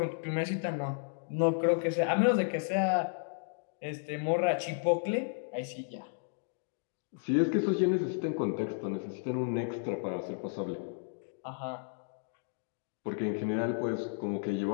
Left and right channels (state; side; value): silent; right; digital silence